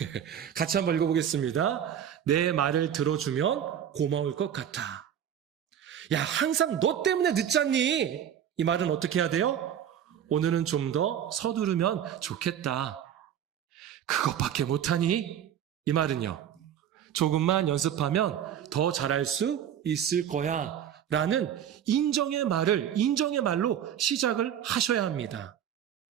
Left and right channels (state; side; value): quieter; left; 9.6 dB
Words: 같이 한번 읽어보겠습니다. 내 말을 들어주면 고마울 것 같아. 야, 항상 너 때문에 늦잖니? 이 말은 어떻게 해야 돼요? 오늘은 좀 더 서두르면 좋겠다. 그것밖에 못하니? 이 말은요. 조금만 연습하면 더 잘할 수 있을 거야. 라는 인정의 말로 시작을 하셔야 합니다.